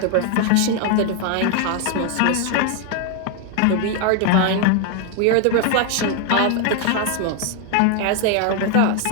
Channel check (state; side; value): different; both; correlation 0.01